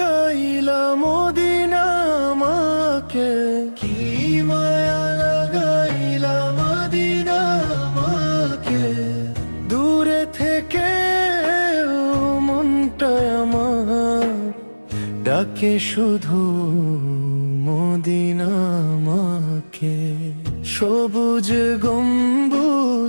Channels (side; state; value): both; inverted; correlation -1.00